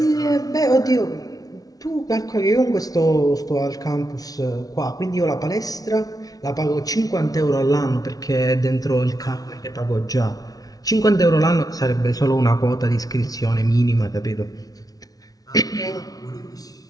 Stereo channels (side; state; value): right; late; 0.18 ms